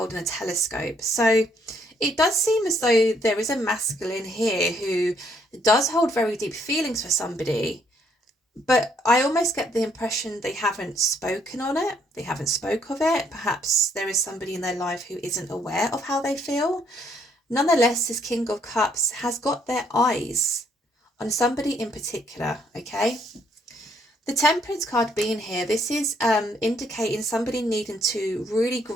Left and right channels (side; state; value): both; normal; correlation 0.69